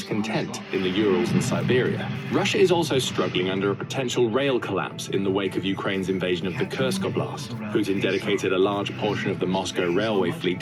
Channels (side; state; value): both; identical; correlation 1.00